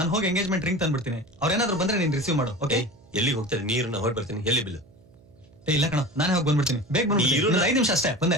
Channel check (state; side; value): noise; right; hum, 27 dB below the sound